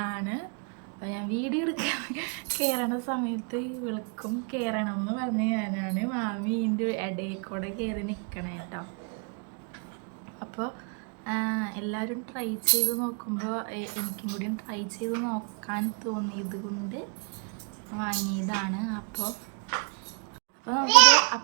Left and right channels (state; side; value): quieter; left; 37.2 dB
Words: അപ്പോൾ ഞാൻ വീഡിയോ എടുക്കാൻ കയറണ സമയത്ത് ഇവൾക്കും കയറണം എന്ന് പറഞ്ഞ് ഞാനാണ് മാമി ഇതിൻ്റെ ഇടയിൽ കൂടെ കയറി നിൽക്കണേ കേട്ടോ. അപ്പോൾ എല്ലാവരും ട്രൈ ചെയ്ത് നോക്കുമ്പോൾ എനിക്കും കൂടി ട്രൈ ചെയ്ത് നോക്കാൻ തോന്നിയത് കൊണ്ട് വാങ്ങിയതാണ്. അപ്പോൾ നമുക്കിത്